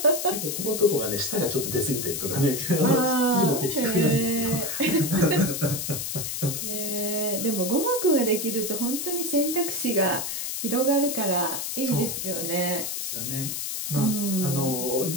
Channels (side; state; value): left; noise; hiss, 3 dB below the sound